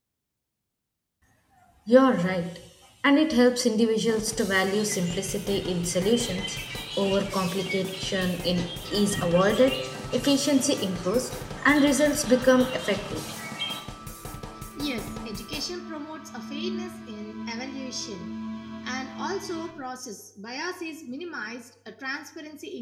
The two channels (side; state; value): both; identical; correlation 1.00